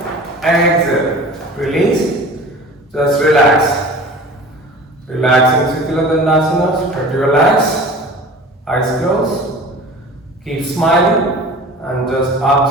Relax in Sthira Dandasana. Spread your legs, eyes closed, keep smiling and just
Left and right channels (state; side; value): normal; both; correlation 0.40